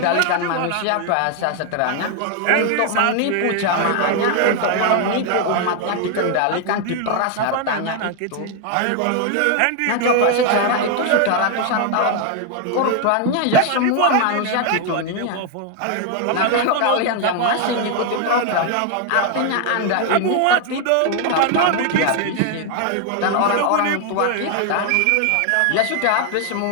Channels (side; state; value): both; different; correlation 0.01